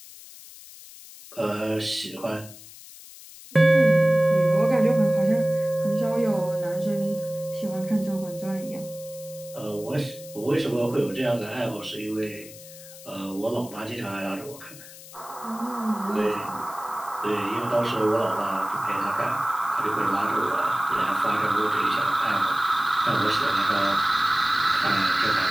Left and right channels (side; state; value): left; noise; hiss, 17 dB below the sound